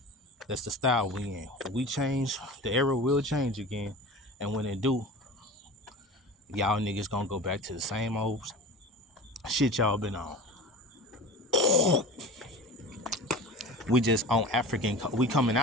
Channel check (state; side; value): normal; both; correlation 0.35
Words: That's the style we in. When we change, the era will change again. And when it do, y'all niggas gonna go back to the same old shit y'all been on. We just on we coming